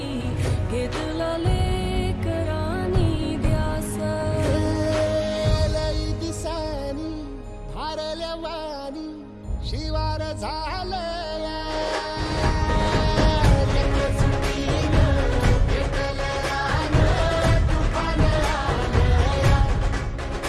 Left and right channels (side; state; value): both; identical; correlation 1.00